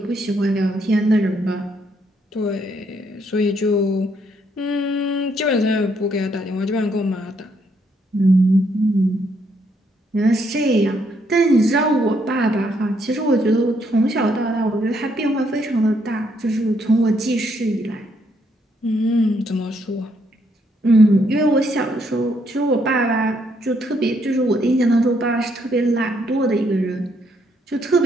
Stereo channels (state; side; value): normal; both; correlation 0.73